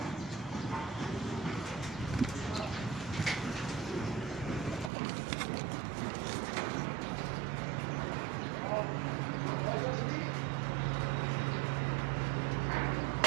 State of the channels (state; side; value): drops out; left; at 4.9 s